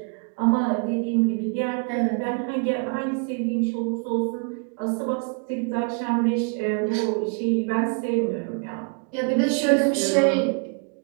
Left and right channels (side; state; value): left; quieter; 37.5 dB